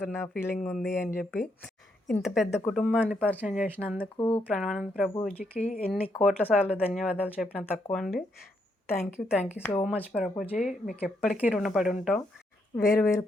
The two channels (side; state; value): both; normal; correlation 0.77